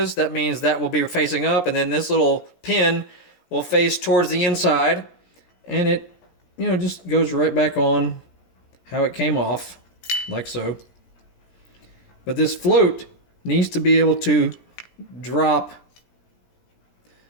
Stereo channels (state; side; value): late; right; 17 ms